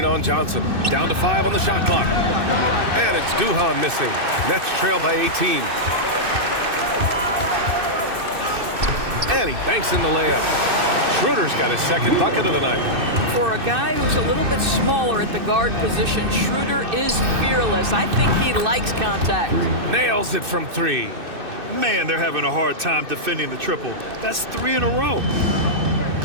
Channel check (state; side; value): late; left; 2.6 ms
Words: on Johnson. Down to 5 on the shot clock. And it's Duhan missing. Nets trail by 18. And he banks in the layup. Schroeder's got his second bucket of the night. For a guy who's a little bit smaller at the guard position, Schroeder is fearless. I think he likes contact. Nails it from 3. Man, they're having a hard time defending the triple. That's 3 in a row.